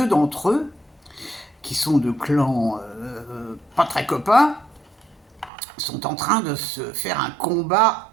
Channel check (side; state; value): left; drops out; at 5.5 s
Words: d'entre eux, qui sont de clans pas très copains, sont en train de se faire un combat